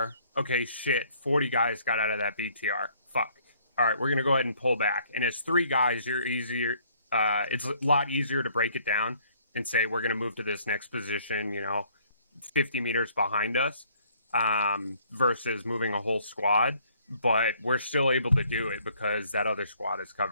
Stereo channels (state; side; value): inverted; both; correlation -0.62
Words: Okay, shit, 40 guys got out of that BTR. Fuck. All right, we're going to go ahead and pull back. And as 3 guys, you're easier. It's a lot easier to break it down and say, we're going to move to this next position, 50 meters behind us, versus moving a whole squad. But we're still able to do it because that other squad is